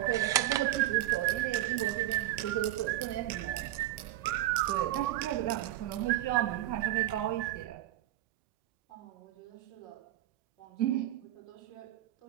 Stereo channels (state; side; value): quieter; left; 14.4 dB